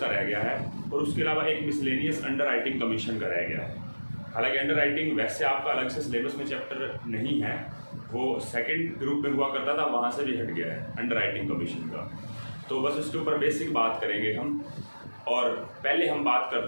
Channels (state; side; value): inverted; both; correlation -1.00